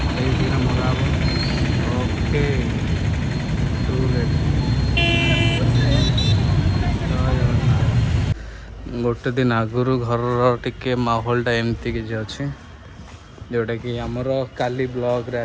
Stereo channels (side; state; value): both; identical; correlation 1.00